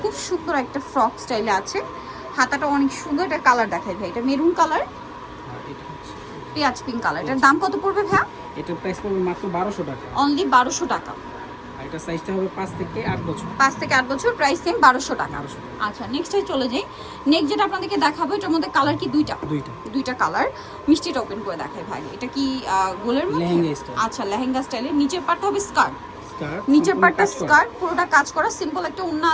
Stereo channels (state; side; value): identical; both; correlation 1.00